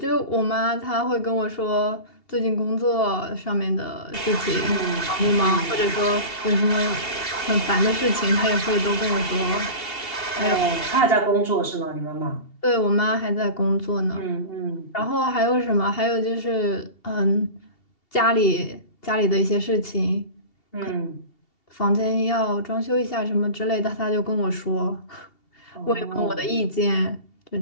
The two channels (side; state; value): right; late; 2.7 ms